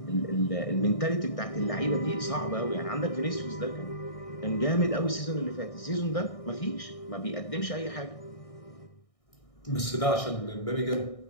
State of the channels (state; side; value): late; right; 1.6 ms